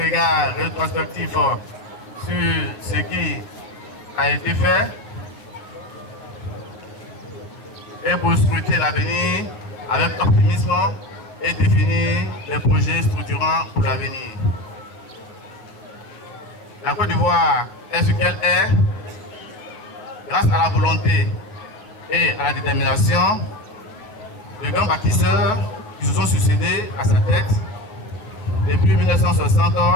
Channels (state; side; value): late; right; 9.2 ms